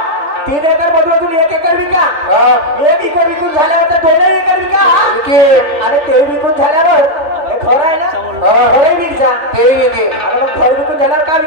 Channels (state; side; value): late; left; 3.4 ms